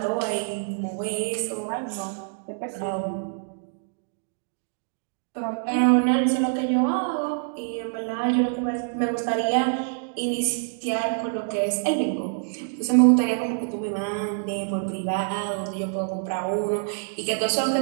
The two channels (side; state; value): left; silent; digital silence